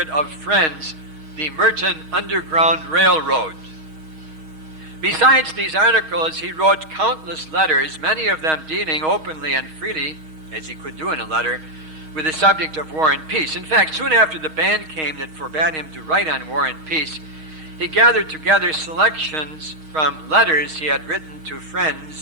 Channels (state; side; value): late; left; 6.4 ms